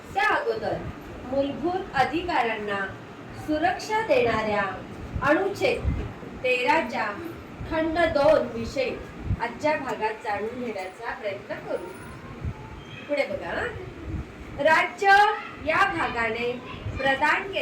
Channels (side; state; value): both; identical; correlation 1.00